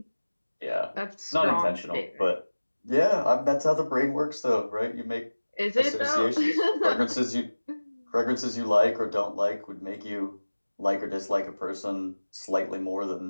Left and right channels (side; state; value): both; inverted; correlation -1.00